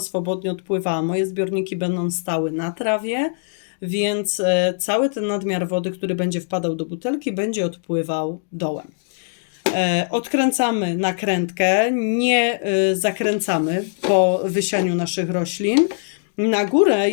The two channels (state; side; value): silent; right; digital silence